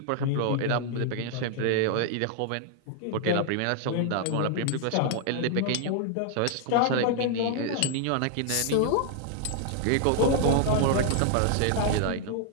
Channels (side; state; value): both; different; correlation 0.00